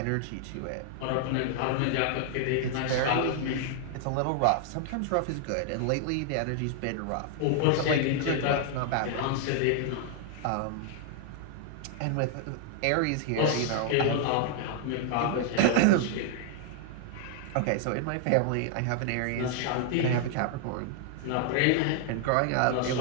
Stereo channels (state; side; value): different; both; correlation 0.00